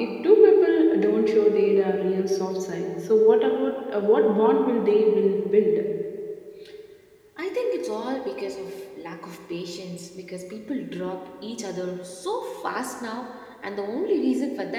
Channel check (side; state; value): both; identical; correlation 1.00